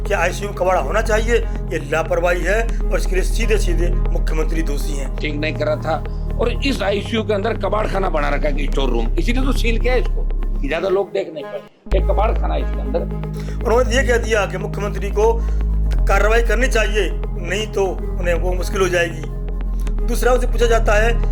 क्या आईसीयू में कबाड़ा होना चाहिए? ये लापरवाही है और इसके लिए सीधे सीधे मुख्यमंत्री दोषी हैं। ठीक नहीं कर रहा था और इस आईसीयू के अंदर कबाड़ खाना बना रखा है, स्टोर रूम, इसीलिए तो सील किया इसको कि ज्यादा लोग देख नहीं पाए। एक कबाड़ खाना इसके अंदर। उन्होंने ये कह दिया कि मुख्यमंत्री को कार्रवाई करनी चाहिए, नहीं तो उन्हें वो मुश्किल हो जाएगी। दूसरा उनसे पूछा जाता है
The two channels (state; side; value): identical; both; correlation 1.00